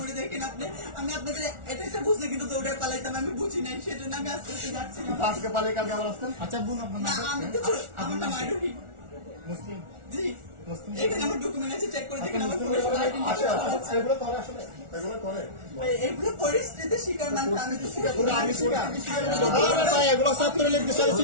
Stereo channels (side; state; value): left; late; 1.4 ms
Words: দেখেন আপনি। আমি আপনাদের এটা একটা বুঝলে কিন্তু দৌড়ে পালাইতাম, আমি বুঝি নাই, সেজন্য আমি আস্তে আস্তে যাচ্ছি। আজকে পালাই কালকে আবার আসতেন। আচ্ছা বোন, আপনার নাম? আমি তো আমার নাম আইডি মুসলিম। জি, এখানে আমার ডকুমেন্ট আছে, চেক করে দেখেন আমার এগুলো পরিস্থিতি শিকার মানুষ। আমি তো শিকার করি, আমি এগুলো সব করে লিখতে চাইছি,